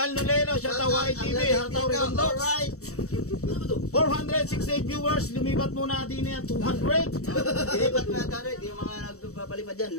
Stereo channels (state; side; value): late; right; 0.65 ms